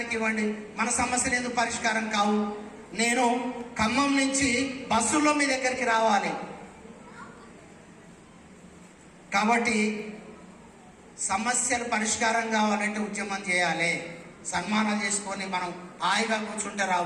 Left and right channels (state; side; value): identical; both; correlation 1.00